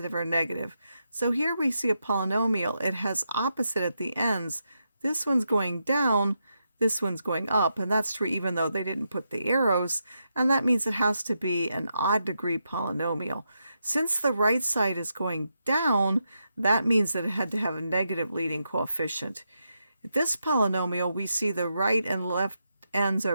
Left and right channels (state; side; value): inverted; both; correlation -0.84